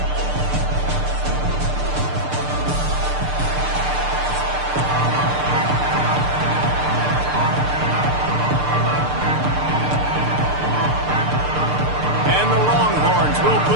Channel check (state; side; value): late; left; 6.7 ms